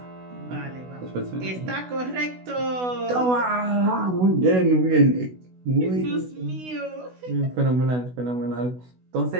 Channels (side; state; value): left; late; 16 ms